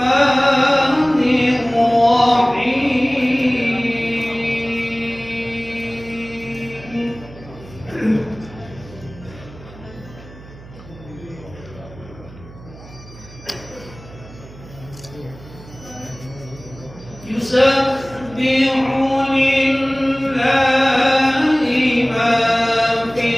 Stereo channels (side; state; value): right; noise; hum, 19 dB below the sound